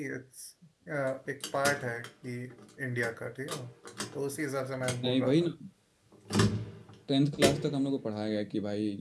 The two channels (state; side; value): identical; both; correlation 1.00